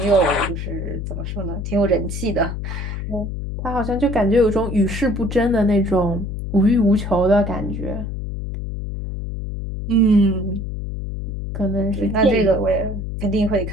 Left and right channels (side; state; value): left; noise; hum, 5 dB below the sound